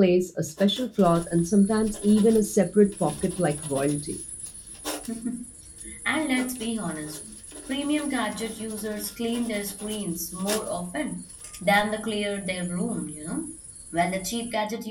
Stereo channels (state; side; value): identical; both; correlation 1.00